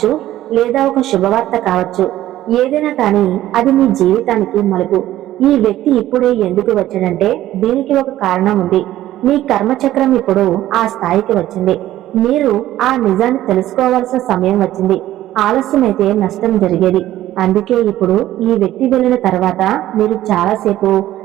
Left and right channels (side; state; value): left; quieter; 14.0 dB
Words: లేదా ఒక శుభవార్త కావచ్చు. ఏదైనా కానీ అది మీ జీవితానికి మలుపు. ఈ వ్యక్తి ఇప్పుడే ఎందుకు వచ్చాడంటే దీనికి ఒక కారణం ఉంది. మీ కర్మచక్రం ఇప్పుడు ఆ స్థాయికి వచ్చింది. మీరు ఆ నిజాన్ని తెలుసుకోవాల్సిన సమయం వచ్చింది. ఆలస్యమైతే నష్టం జరిగేది. అందుకే ఇప్పుడు ఈ వ్యక్తి వెళ్ళిన తర్వాత మీరు చాలాసేపు